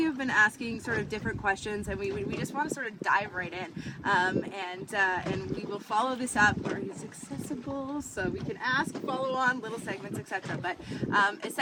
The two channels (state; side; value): identical; both; correlation 1.00